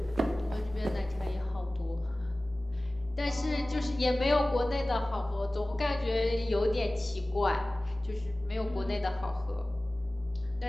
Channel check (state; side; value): normal; both; correlation 0.98